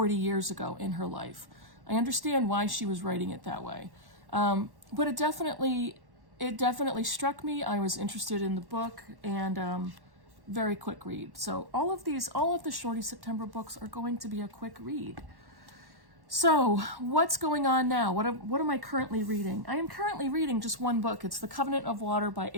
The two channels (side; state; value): left; late; 1.1 ms